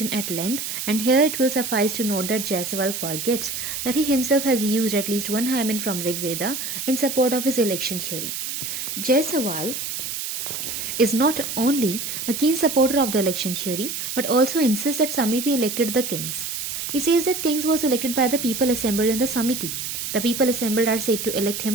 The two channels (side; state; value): right; noise; hiss, 5 dB below the sound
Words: at length, and here it will suffice to note that Jaiswal forgets that he himself has used at least one hymen from Rig Veda in support of his election theory. Jaiswal is not only a keen supporter of the election theory but also insists that Samiti elected the kings. He says that kings was elected by the people assembled in the Samiti. The people assembled are said to elect